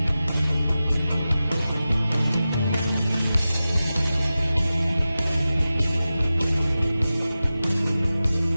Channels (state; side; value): inverted; both; correlation -0.94